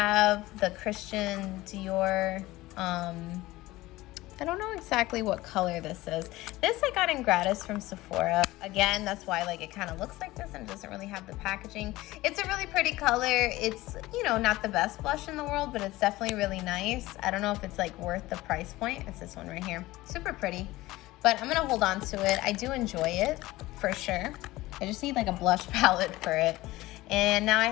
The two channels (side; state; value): right; quieter; 18.4 dB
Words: the Christian Dior, I don't know exactly what color this is. This I got in gratis from Sephora. Again, that's why like it kind of looks like this and doesn't really have the packaging. It's a really pretty color. It's, you know, not the best blush in the world, but it's definitely really nice. I don't know if it's like worth the price point. It's this one right here. Super pretty, but I'm gonna hold on to it. I do enjoy it for sure. I just need like a blush palette for it. And now I